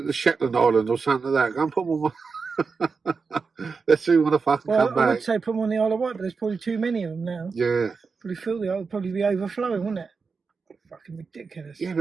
the Shetland Island or something like that. Go and put them on. Let's see when I fucking come back. I would say put them on the Isle of Wight, but there's probably too many of them now. Yeah. Probably feel the Isle would probably be overflowing, wouldn't it? Fucking ridiculous. Yeah,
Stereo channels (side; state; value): left; quieter; 4.9 dB